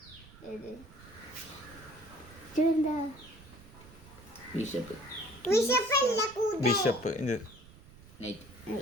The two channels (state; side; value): noise; right; rumble, 20 dB below the sound